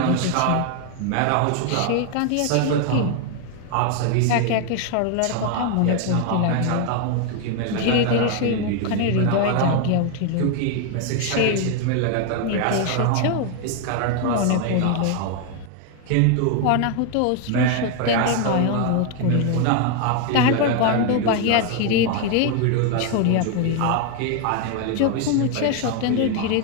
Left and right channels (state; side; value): different; both; correlation 0.01